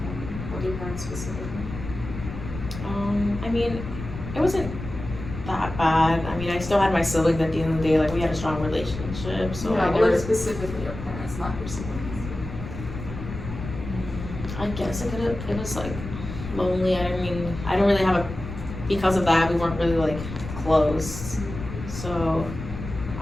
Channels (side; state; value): left; noise; rumble, 9 dB below the sound